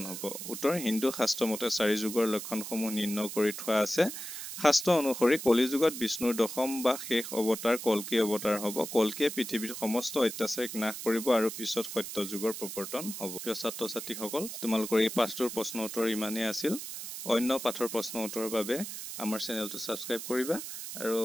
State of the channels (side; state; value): right; noise; hiss, 8 dB below the sound